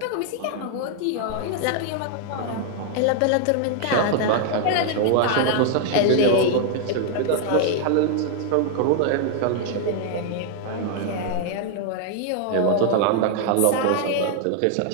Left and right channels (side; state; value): both; different; correlation 0.00